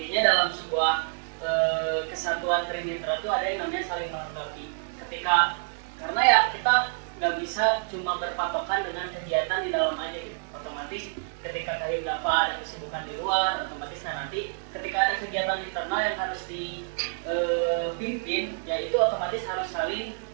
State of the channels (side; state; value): left; silent; digital silence